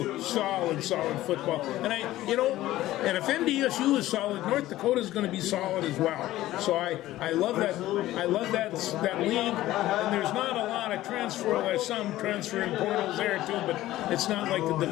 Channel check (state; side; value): quieter; right; 15.4 dB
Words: solid football, and and if NDSU is solid, North Dakota is going to be solid as well. So I love that league, and there's not a lot of transfer. There's some transferring portals there too, but it's not like the